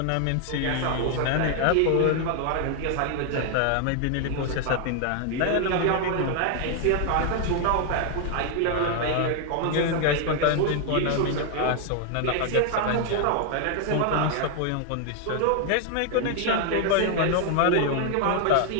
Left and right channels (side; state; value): both; different; correlation 0.00